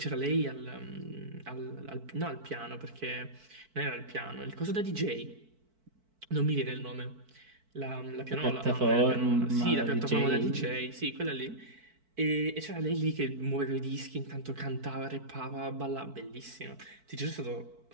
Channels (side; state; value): left; late; 4.5 ms